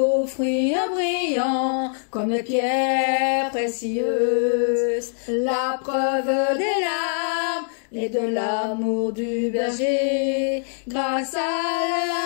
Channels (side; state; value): right; silent; digital silence